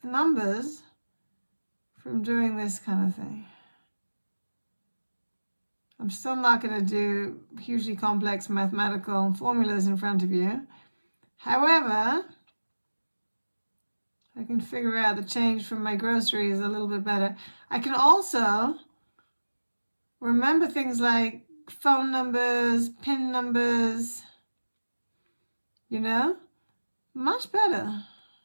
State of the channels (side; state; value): both; inverted; correlation -1.00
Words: numbers from doing this kind of thing. I'm still not going to do hugely complex mathematical formulas in front of you. However, I can figure out the change from my groceries a little bit better. I can also remember things like phone numbers, PIN numbers, you know, much better.